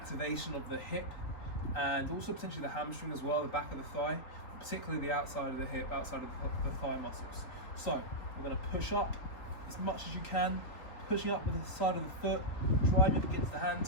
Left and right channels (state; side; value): late; right; 3.8 ms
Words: of the hip, and also potentially the hamstring as well, the back of the thigh, particularly the outside of the hip, outside of the thigh muscles. So we're going to push up as much as you can, pushing up with the side of the foot, driving up against the